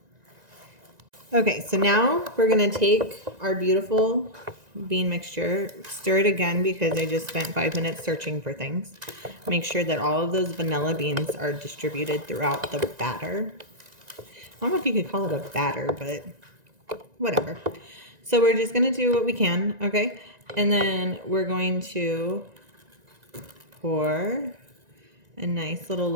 Okay, so now we're going to take our beautiful bean mixture, stir it again because I just spent 5 minutes searching for things. Make sure that all of those vanilla beans are distributed throughout the batter. I don't know if you could call it a batter, but whatever. So we're just going to do what we can, okay? And then we're going to pour a nice little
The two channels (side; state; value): left; late; 1.9 ms